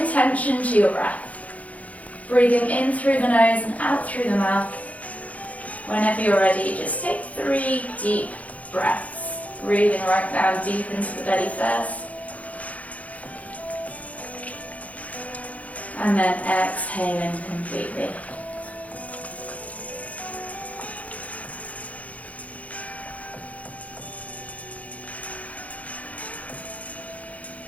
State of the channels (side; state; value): right; late; 0.069 ms